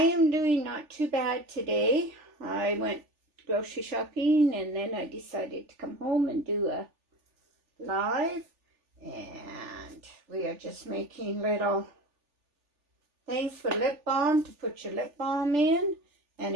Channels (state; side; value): late; left; 3.4 ms